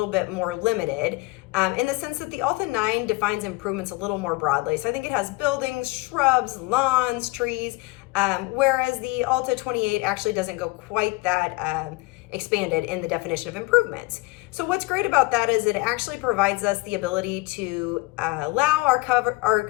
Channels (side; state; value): right; quieter; 23.3 dB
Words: bit more limited in the sense that the ALTA 9 defines improvements a little more broadly. So I think it has buildings, shrubs, lawns, trees, whereas the ALTA 28 actually doesn't go quite that expanded in the definition of improvements. So what's great about that is it actually provides us the ability to allow